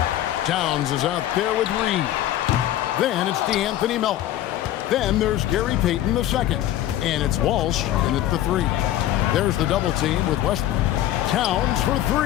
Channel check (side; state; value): right; quieter; 13.1 dB